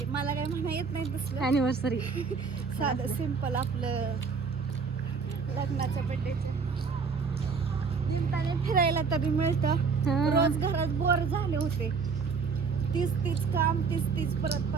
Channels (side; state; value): left; quieter; 5.2 dB